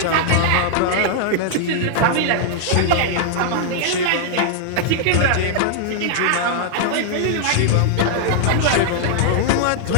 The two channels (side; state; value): both; different; correlation -0.01